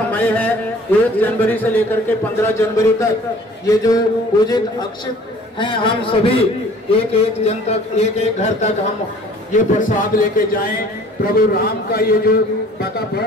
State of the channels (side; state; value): both; normal; correlation 0.51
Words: है 1 जनवरी से लेकर के 15 जनवरी तक, ये जो पूजित अक्षित हैं, हम सभी एक जन तक, एक घर तक हम ये प्रसाद लेके जाएं। प्रभु राम का ये जो